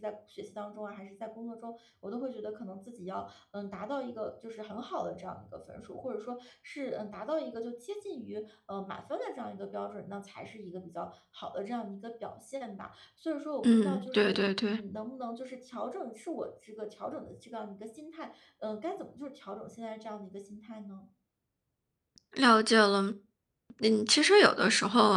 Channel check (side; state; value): both; identical; correlation 1.00